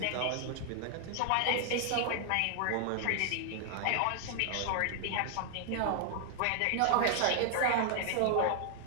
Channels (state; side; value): different; both; correlation 0.00